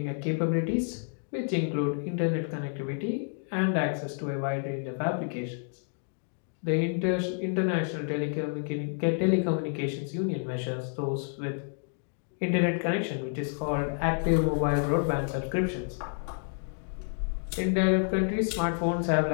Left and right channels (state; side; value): silent; right; 58 dB below the other